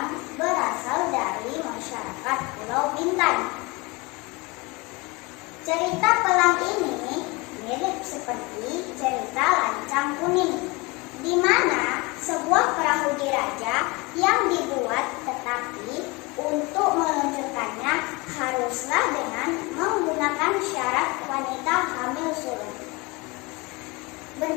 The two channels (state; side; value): quieter; right; 25.5 dB